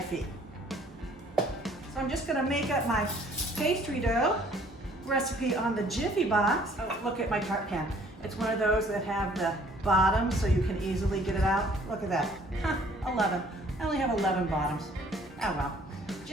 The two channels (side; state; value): both; normal; correlation 0.58